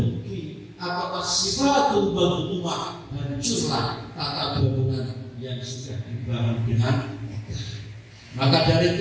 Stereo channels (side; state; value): both; identical; correlation 1.00